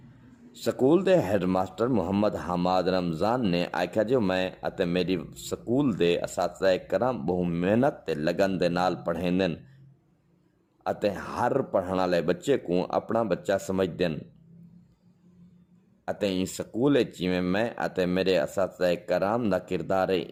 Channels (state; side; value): identical; both; correlation 1.00